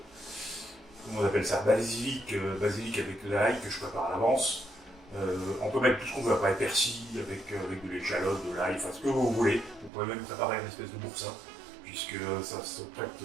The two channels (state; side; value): drops out; left; at 9.9 s